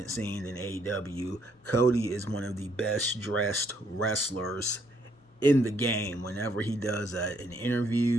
scene in AEW. Cody is one of the best dressed wrestlers in the game. Whenever he does an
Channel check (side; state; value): both; normal; correlation 0.70